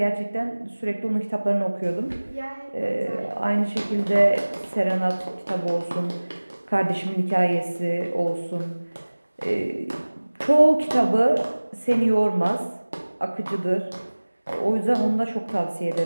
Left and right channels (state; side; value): inverted; both; correlation -1.00